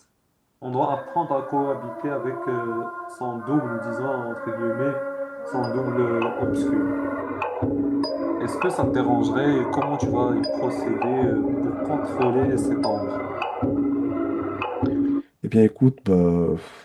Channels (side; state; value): both; identical; correlation 1.00